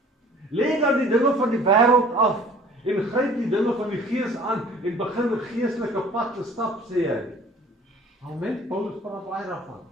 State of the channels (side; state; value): both; normal; correlation 0.50